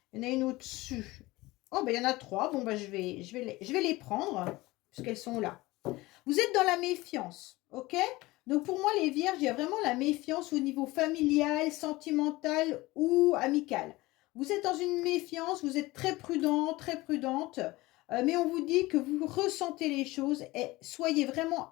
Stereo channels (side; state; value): right; quieter; 20.2 dB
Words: Il y en a une au-dessus. Oh, bah, il y en a 3. Bon, bah, je vais les prendre, puisqu'elles sont là. Vous êtes dans la méfiance, ok? Donc, pour moi, les vierges, il y a vraiment la méfiance au niveau familial, sentimental ou amical. Vous êtes dans une méfiance, vous êtes très prudent, très prudente, mais on vous dit que vous ressentez les choses et soyez vraiment